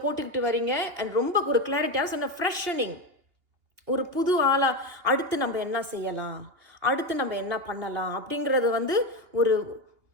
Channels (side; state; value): left; late; 2.8 ms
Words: போட்டுக்கிட்டு வரீங்க. அண்ட் ரொம்ப ஒரு கிளாரிட்டியாக சொன்ன ஃப்ரெஷனிங், ஒரு புது ஆளாக அடுத்து நம்ம என்ன செய்யலாம், அடுத்து நம்ம என்ன பண்ணலாம் அப்படிங்கிறது வந்து ஒரு